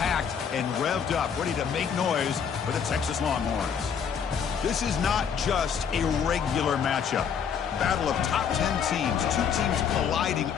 and revved up, ready to make noise for the Texas Longhorns. This is not just a regular matchup. Battle of top 10 teams, two teams colliding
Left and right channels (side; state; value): right; quieter; 7.2 dB